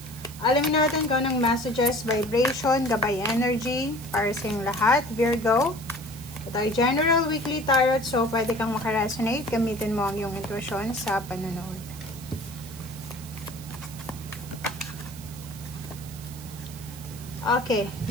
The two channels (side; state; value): right; noise; hiss, 16 dB below the sound